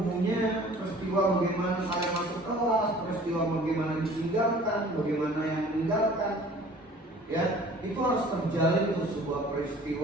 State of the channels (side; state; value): both; normal; correlation 0.49